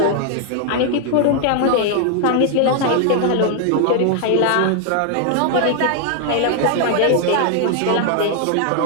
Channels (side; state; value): both; different; correlation 0.00